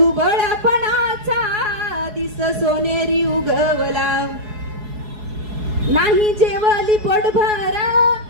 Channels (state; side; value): late; left; 4.7 ms